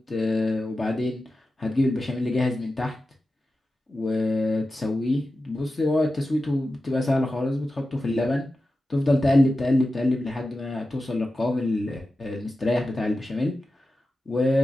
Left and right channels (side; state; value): both; normal; correlation 0.93